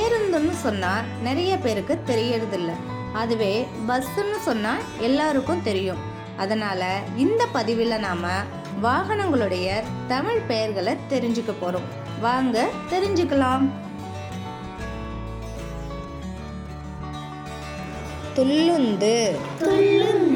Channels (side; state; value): both; identical; correlation 1.00